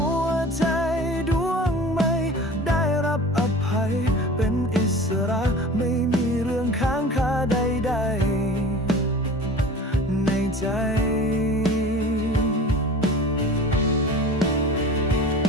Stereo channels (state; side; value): normal; both; correlation 0.39